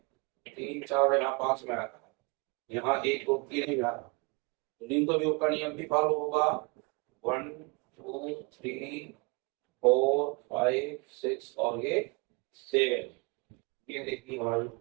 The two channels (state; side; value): quieter; left; 29.9 dB